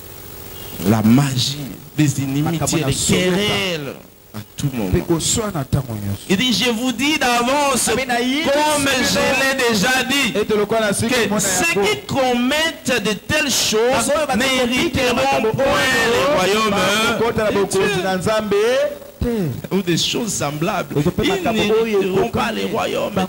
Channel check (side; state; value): both; identical; correlation 1.00